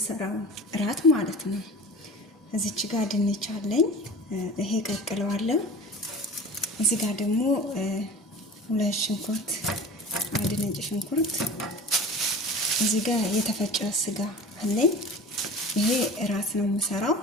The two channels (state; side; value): normal; both; correlation 0.38